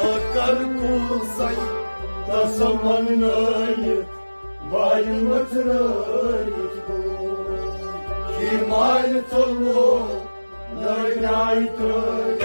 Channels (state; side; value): inverted; both; correlation -1.00